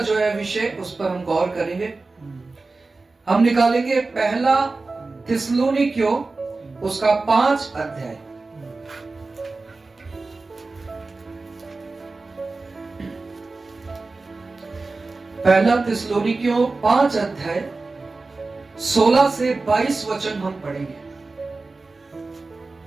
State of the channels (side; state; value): left; quieter; 3.6 dB